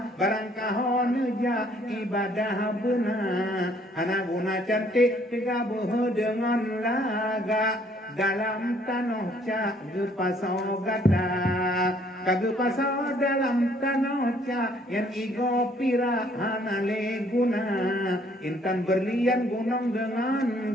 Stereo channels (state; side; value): normal; both; correlation 0.63